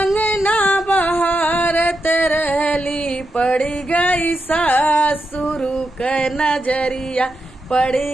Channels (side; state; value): both; normal; correlation 0.86